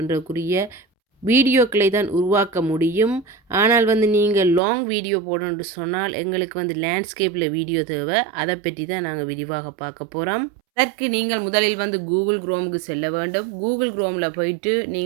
வீடியோக்களை தான் உருவாக்க முடியும். ஆனால் வந்து நீங்கள் லாங் வீடியோ போடணும்னு சொன்னால் எங்களுக்கு வந்து லேண்ட்ஸ்கேப்பில் வீடியோ தேவை. அதை பற்றி தான் நாங்கள் விரிவாக பார்க்க போகிறோம். அதற்கு நீங்கள் முதலில் வந்து கூகுள் குரோமுக்கு செல்ல வேண்டும். கூகுள் குரோமில் போயிட்டு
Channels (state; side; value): drops out; left; at 4.6 s